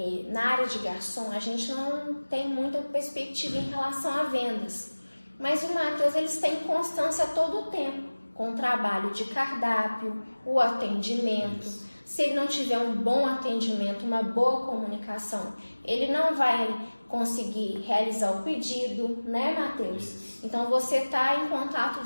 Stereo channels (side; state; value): both; inverted; correlation -1.00